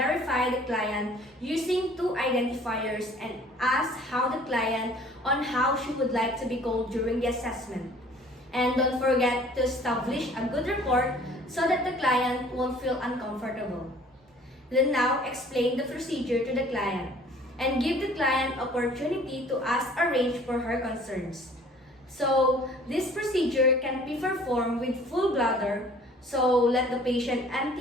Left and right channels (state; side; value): normal; both; correlation 0.52